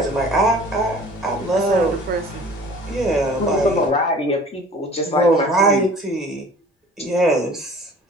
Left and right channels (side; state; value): both; normal; correlation 0.47